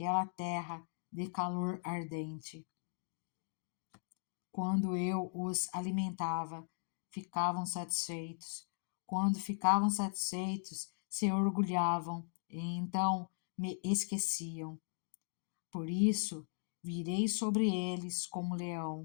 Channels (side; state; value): right; silent; digital silence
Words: terra de calor ardente. Quando eu os alimentava, ficavam satisfeitos. Quando ficavam satisfeitos, se orgulhavam e então me esqueciam. Por isso, virei sobre eles como